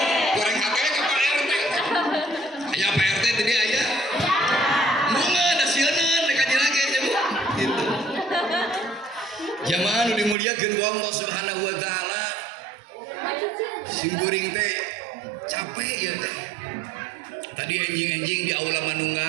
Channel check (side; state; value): left; drops out; at 10.4 s